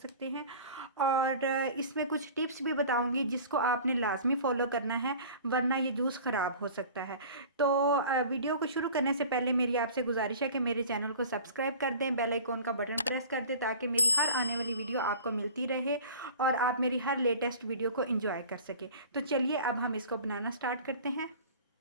हैं। और इसमें कुछ टिप्स भी बताऊंगी जिसको आपने लाजमी फॉलो करना है, वरना ये जूस ख़राब हो सकता है। तो वीडियो को शुरू करने से पहले मेरी आपसे गुजारिश है कि मेरे चैनल को सब्सक्राइब कर दें, बेल आइकॉन का बटन प्रेस कर दें ताकि मेरी हर आने वाली वीडियो आपको मिलती रहे और आप मेरी हर लेटेस्ट वीडियो को एंजॉय कर सके। तो चलिए अब हम इसको बनाना स्टार्ट करते हैं।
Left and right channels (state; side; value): inverted; both; correlation -0.42